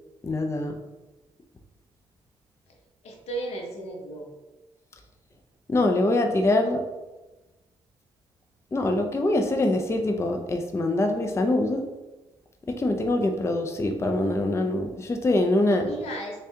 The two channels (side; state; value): both; normal; correlation 0.78